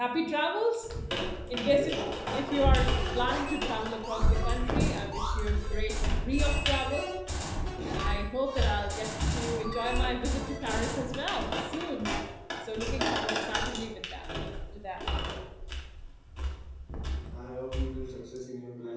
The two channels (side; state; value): both; identical; correlation 1.00